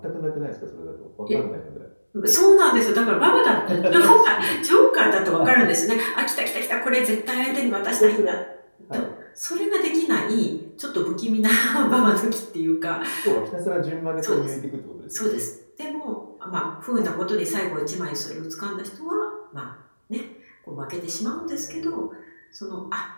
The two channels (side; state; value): both; inverted; correlation -1.00